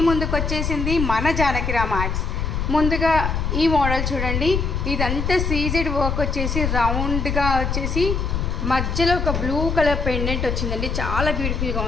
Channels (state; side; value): noise; left; rumble, 1 dB below the sound